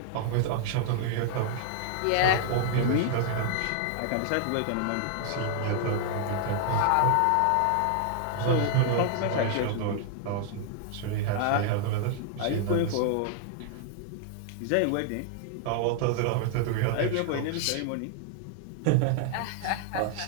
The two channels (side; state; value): both; different; correlation 0.00